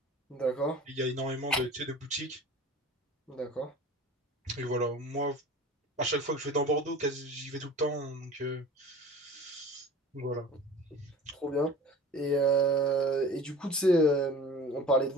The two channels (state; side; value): normal; both; correlation 0.40